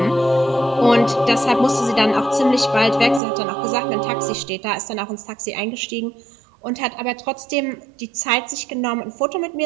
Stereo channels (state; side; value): drops out; left; at 3.2 s